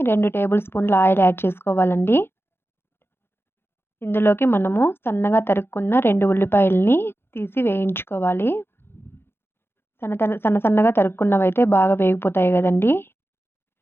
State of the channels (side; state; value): right; late; 0.11 ms